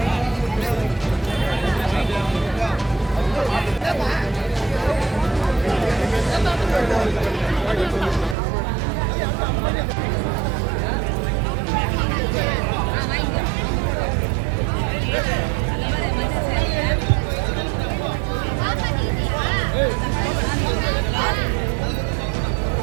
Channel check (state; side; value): drops out; left; at 8.3 s